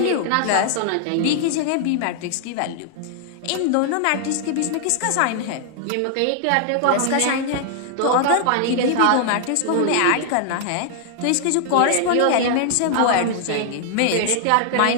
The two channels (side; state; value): both; different; correlation 0.00